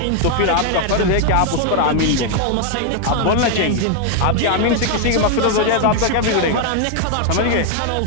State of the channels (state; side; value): different; both; correlation 0.00